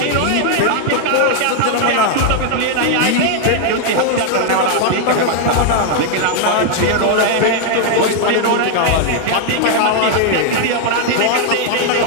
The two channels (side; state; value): both; different; correlation 0.00